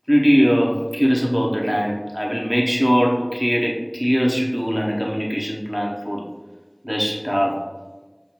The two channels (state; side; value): identical; both; correlation 1.00